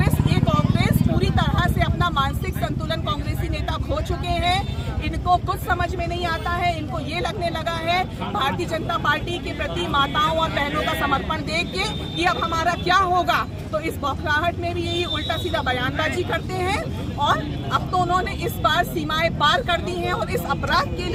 पूरी तरह से अपना मानसिक संतुलन कांग्रेसी नेता खो चुके हैं। इनको कुछ समझ में नहीं आता है। इनको ये लगने लगा है भारतीय जनता पार्टी के प्रति माताओं और बहनों का समर्पण देख के कि अब हमारा क्या होगा। तो इस बौखलाहट में भी यही उल्टा सीधा बयानबाजी करते हैं और अब तो उन्होंने इस बार सीमाएं पार कर दी हैं। और इस अपराध के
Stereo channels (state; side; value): identical; both; correlation 1.00